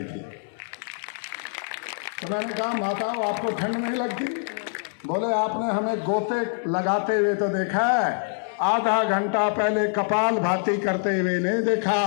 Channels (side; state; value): right; silent; 62 dB below the other